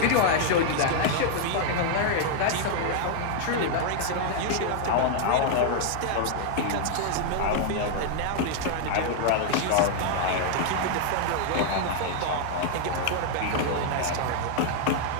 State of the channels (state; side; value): different; both; correlation 0.00